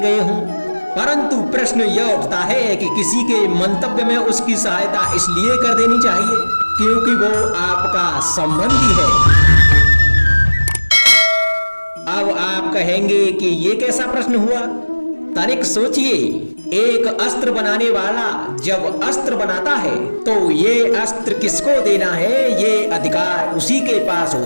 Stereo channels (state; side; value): inverted; both; correlation -1.00